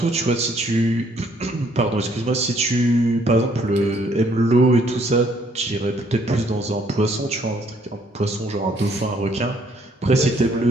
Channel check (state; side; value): normal; both; correlation 0.66